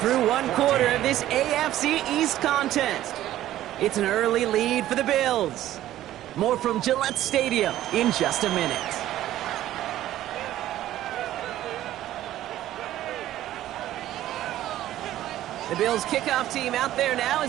one quarter of this AFC East contest. It's an early lead for the Bills. More from Gillette Stadium in just a minute. The Bills kickoff team out there now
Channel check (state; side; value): quieter; left; 13.5 dB